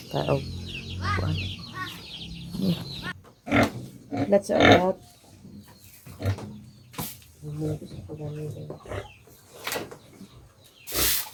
ta og kuan. Let's out.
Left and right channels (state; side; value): identical; both; correlation 1.00